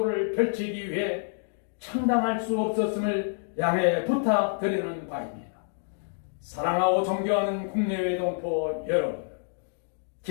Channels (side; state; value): right; silent; digital silence